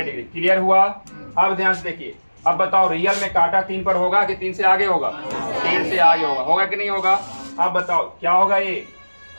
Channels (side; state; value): both; inverted; correlation -1.00